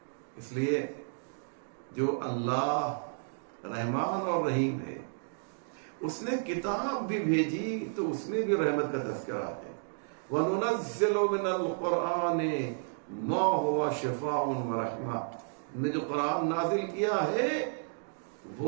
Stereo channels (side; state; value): left; silent; digital silence